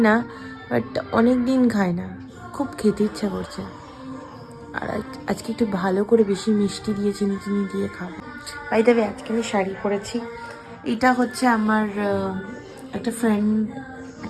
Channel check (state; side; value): identical; both; correlation 1.00